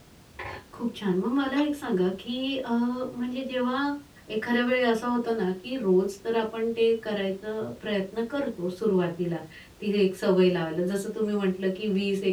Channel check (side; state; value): both; identical; correlation 1.00